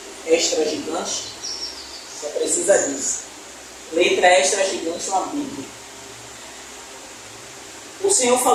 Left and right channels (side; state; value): both; identical; correlation 1.00